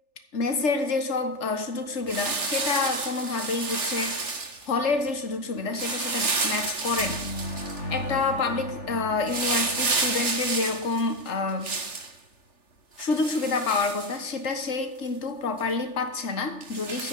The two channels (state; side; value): late; right; 3.4 ms